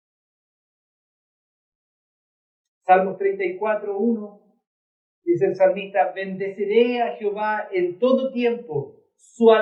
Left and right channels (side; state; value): both; identical; correlation 1.00